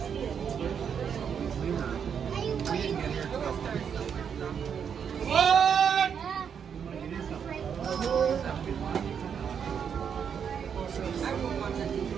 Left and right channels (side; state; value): left; quieter; 7.4 dB